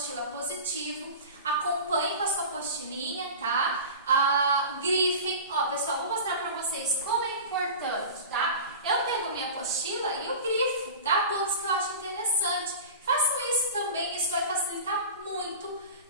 Positivo. Acompanhe com a sua apostilinha, tá? Grifem. Ó, pessoal, vou mostrar para vocês como é importante, tá? Eu pego a minha apostila e eu grifo, tá? Pontos que eu acho interessante. Façam isso também, isso vai facilitar muito,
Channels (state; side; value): inverted; both; correlation -0.34